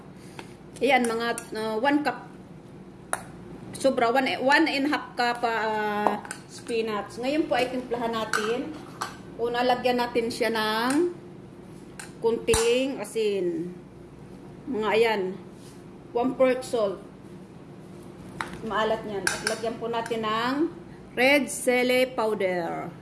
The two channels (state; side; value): identical; both; correlation 1.00